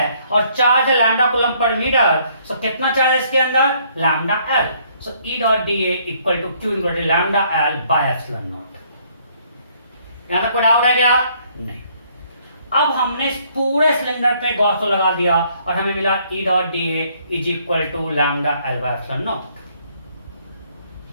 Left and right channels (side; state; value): both; inverted; correlation -0.65